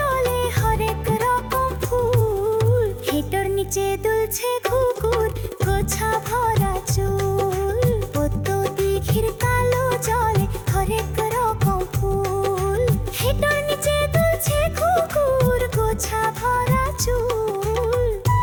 হরেক রকম ফুল, হেঁটোর নিচে দুলছে কুকুর, গোছা ভরা চুল। পদ্ম দিঘির কালো জলে হরেক রকম ফুল, হেঁটোর নিচে দুলছে কুকুর, গোছা ভরা চুল।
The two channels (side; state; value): both; identical; correlation 1.00